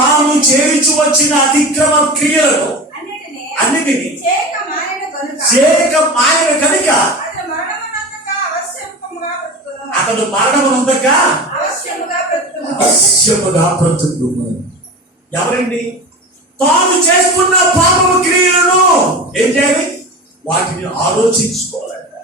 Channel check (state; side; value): normal; both; correlation 0.30